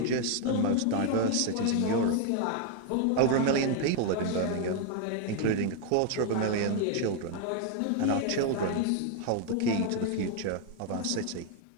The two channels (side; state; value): both; different; correlation 0.00